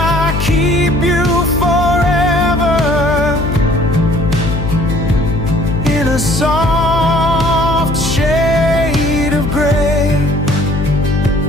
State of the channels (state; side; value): noise; left; hum, 3 dB below the sound